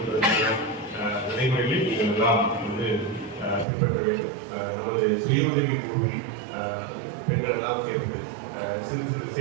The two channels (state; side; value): drops out; left; at 3.7 s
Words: நடைமுறைகளில் நீங்கள் எல்லாம் பின்பற்ற வேண்டும். நமது சுய உதவி குழுவில் பெண்கள் எல்லாம் சேர்ந்து சிறு சிறு